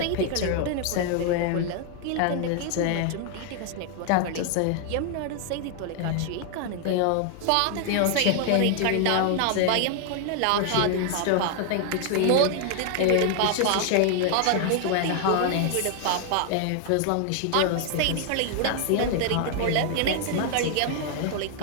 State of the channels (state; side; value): different; both; correlation 0.00